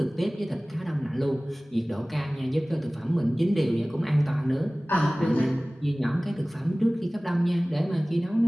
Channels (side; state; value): both; normal; correlation 0.98